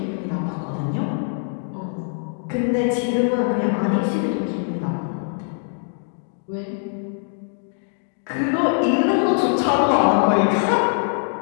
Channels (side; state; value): right; silent; 57 dB below the other